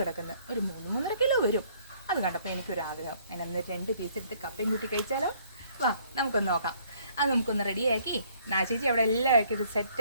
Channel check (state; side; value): inverted; both; correlation -0.62